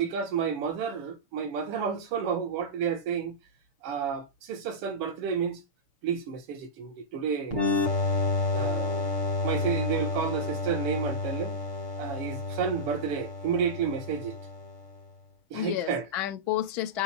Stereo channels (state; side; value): late; left; 7.2 ms